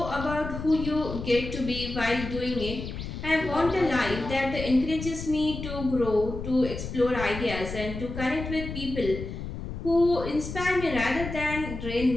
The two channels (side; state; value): left; noise; rumble, 8 dB below the sound